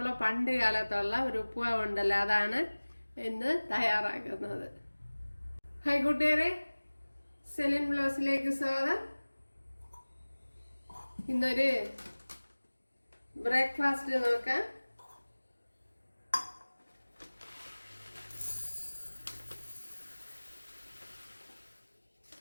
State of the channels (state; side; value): inverted; both; correlation -1.00